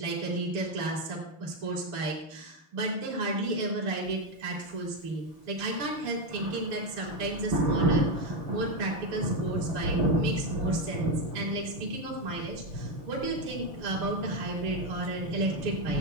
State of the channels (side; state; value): left; late; 6.8 ms